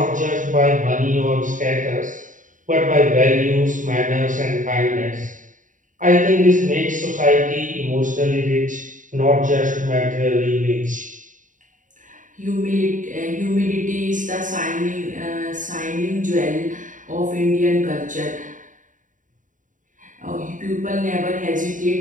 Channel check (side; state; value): left; late; 0.38 ms